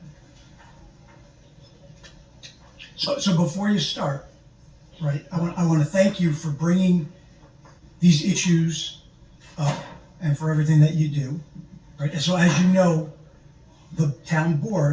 So before you start, right, I want to thank you for bringing these issues up and for everything that you do, right? And so as you know, the town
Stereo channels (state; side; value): identical; both; correlation 1.00